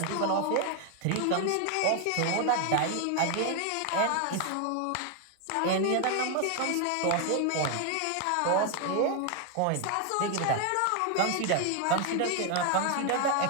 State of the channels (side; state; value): both; different; correlation 0.01